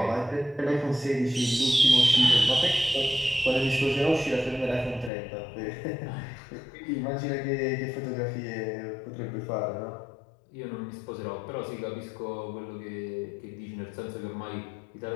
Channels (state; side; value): drops out; right; at 5.1 s